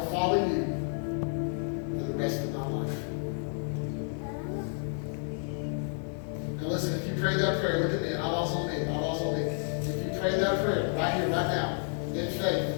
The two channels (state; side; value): silent; right; 57 dB below the other